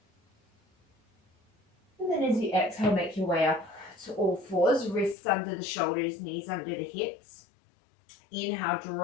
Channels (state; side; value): drops out; right; at 5.2 s